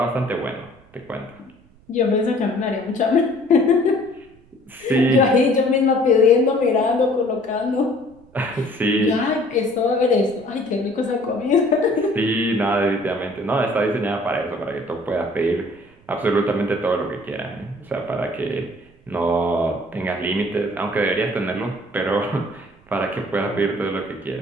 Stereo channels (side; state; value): right; noise; rumble, 29 dB below the sound